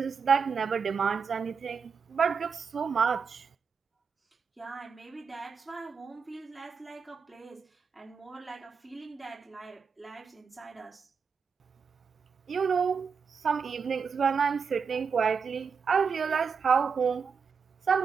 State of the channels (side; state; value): left; quieter; 5.9 dB